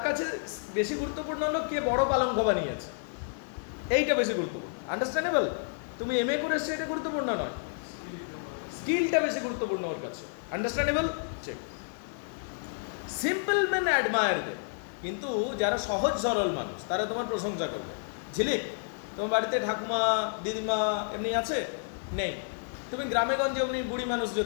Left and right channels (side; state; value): right; silent; digital silence